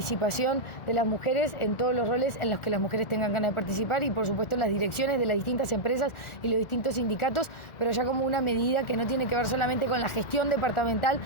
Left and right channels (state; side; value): late; right; 1.4 ms